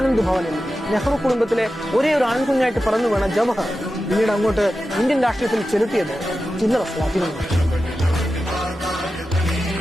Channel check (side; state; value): both; normal; correlation 0.92